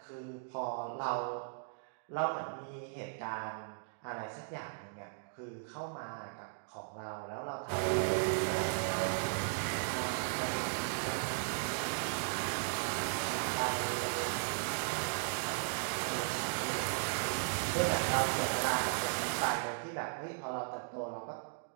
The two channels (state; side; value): silent; left; digital silence